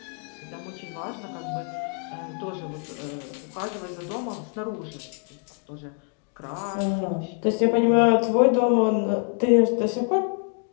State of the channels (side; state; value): right; quieter; 39.4 dB